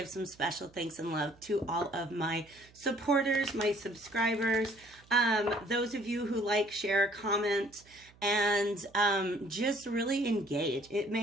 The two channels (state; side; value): noise; right; hum, 27 dB below the sound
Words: some special thanks and love to all of my supporters, my subscribers, those of you who like, share, comment, and just really engage. It